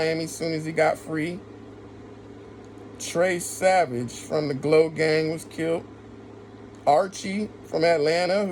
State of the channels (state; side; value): identical; both; correlation 1.00